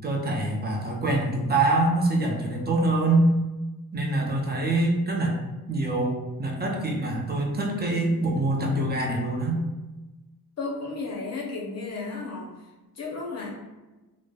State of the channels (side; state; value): both; normal; correlation 0.52